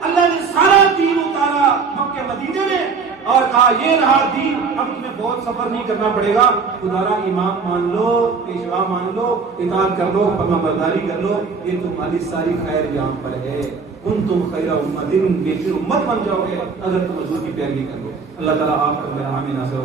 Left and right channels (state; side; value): quieter; left; 5.1 dB